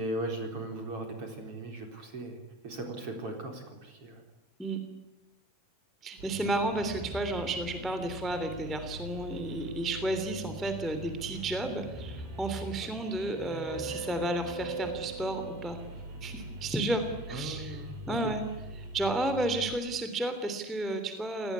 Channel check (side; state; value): both; normal; correlation 0.48